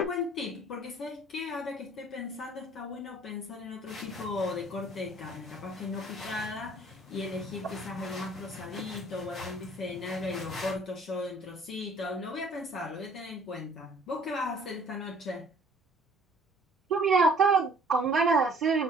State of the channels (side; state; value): both; normal; correlation 0.54